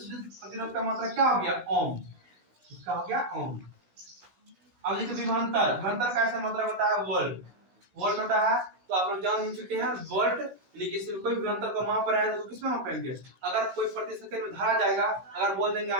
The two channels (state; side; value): late; left; 16 ms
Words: प्रतिरोध का मात्रक क्या हो गया? ओम। इसका हो गया ओम। अब देखिए विभवांतर, विभवांतर का ऐसा मात्रक होता है वोल्ट। वोल्ट होता है तो आप लोग जान ही चुके हैं वोल्ट, लेकिन इसमें कोई विभवांतर को माप रहा है तो किसमें मापेंगे? अगर कोई प्रति सेकंड में धारा जाएगा, अगर बोल देंगे